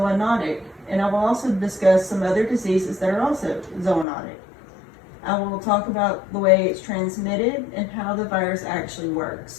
and I will also discuss some other diseases that are also zoonotic. I will talk about the way it's transmitted and how the virus actually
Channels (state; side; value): drops out; right; at 4.0 s